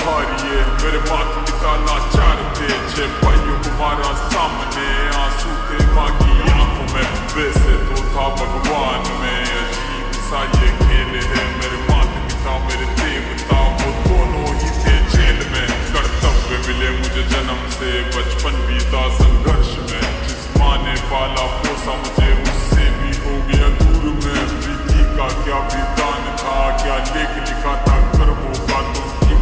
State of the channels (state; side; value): identical; both; correlation 1.00